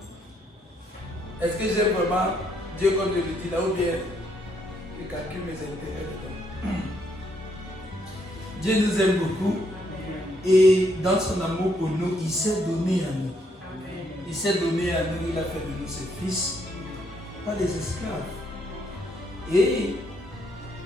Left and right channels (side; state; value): both; normal; correlation 0.72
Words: Est-ce que j'aime vraiment Dieu comme je le dis là ou bien je calcule mes intérêts dedans? Dieu nous aime beaucoup et dans son amour pour nous, il s'est donné à nous. Il s'est donné à nous, il a fait de nous ses fils, pas des esclaves. Et